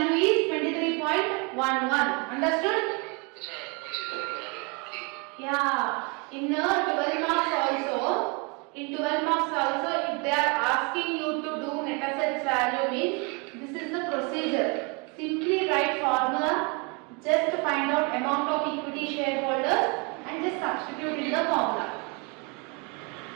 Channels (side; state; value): left; quieter; 31.8 dB